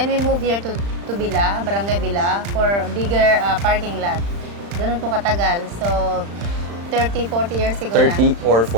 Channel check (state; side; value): late; left; 35 ms